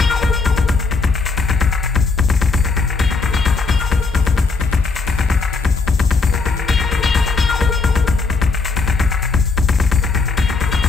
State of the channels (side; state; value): right; quieter; 4.2 dB